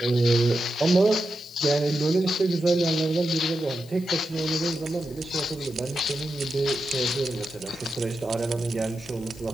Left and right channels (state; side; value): noise; left; hiss, 22 dB below the sound